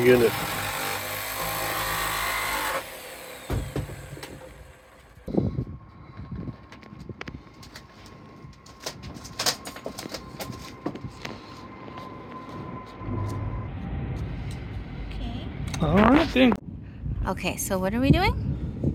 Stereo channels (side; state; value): both; identical; correlation 1.00